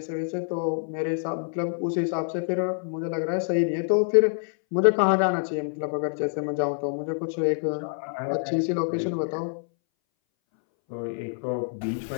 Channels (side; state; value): right; silent; 61 dB below the other